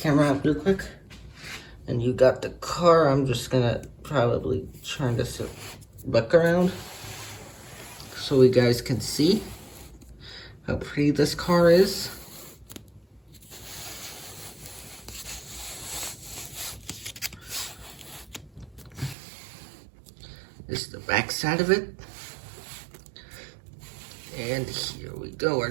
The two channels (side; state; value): left; drops out; at 19.2 s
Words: out real quick. And you got the car. I'm just gonna probably turn this back around so you guys can see how pretty this car is. This is the back side of it. And here we go.